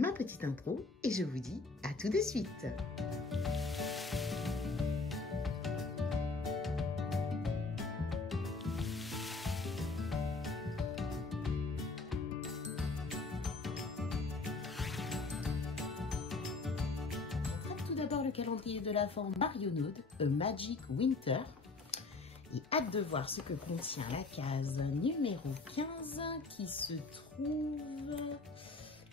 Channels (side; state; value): right; quieter; 3.7 dB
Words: petite intro et je vous dis à tout de suite. Le calendrier de l'Avent Marionneau, A Magic Winter. Et hâte de voir ce que contient la case numéro 15 qui se trouve